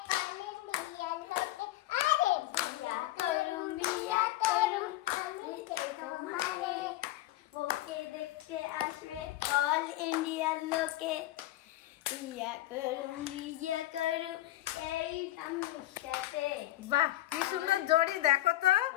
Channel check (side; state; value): right; quieter; 15.9 dB